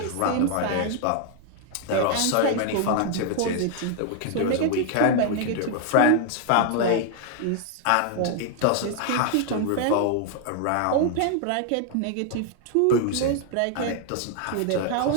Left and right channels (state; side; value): different; both; correlation 0.00